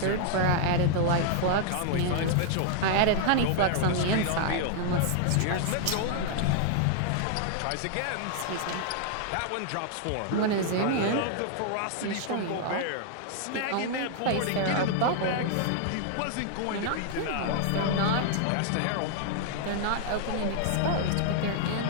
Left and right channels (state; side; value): different; both; correlation 0.00